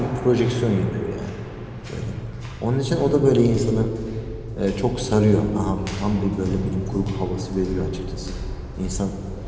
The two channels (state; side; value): identical; both; correlation 1.00